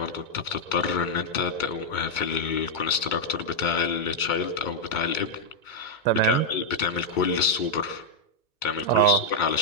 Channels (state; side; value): late; right; 2.2 ms